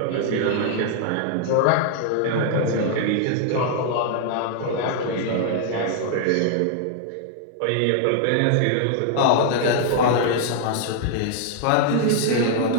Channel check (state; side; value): different; both; correlation 0.00